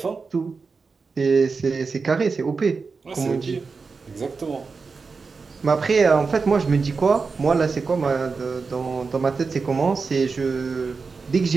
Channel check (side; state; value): left; quieter; 4.7 dB